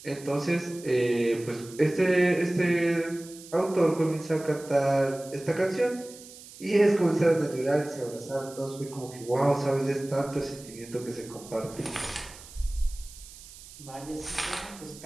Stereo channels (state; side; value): noise; right; hiss, 18 dB below the sound